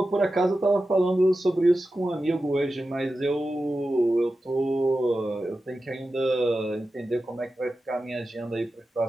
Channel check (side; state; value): both; normal; correlation 0.92